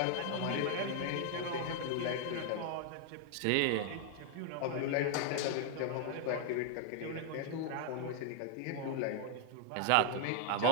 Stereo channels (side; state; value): both; different; correlation 0.00